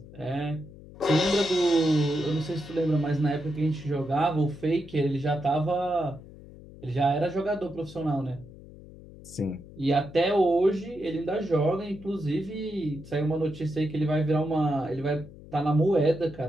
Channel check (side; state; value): left; noise; hum, 18 dB below the sound